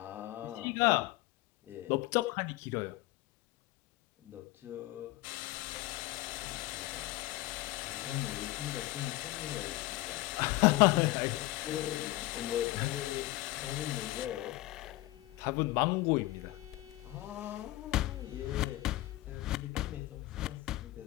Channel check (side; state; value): right; quieter; 18.4 dB